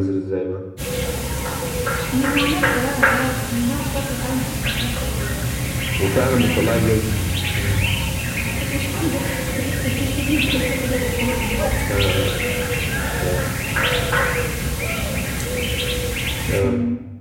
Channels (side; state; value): both; identical; correlation 1.00